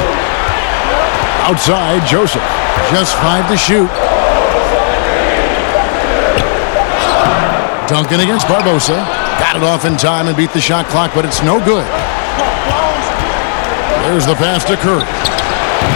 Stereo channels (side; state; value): right; silent; digital silence